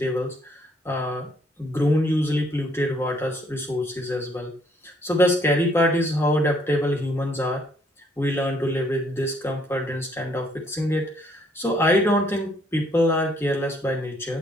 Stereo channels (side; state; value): both; normal; correlation 0.66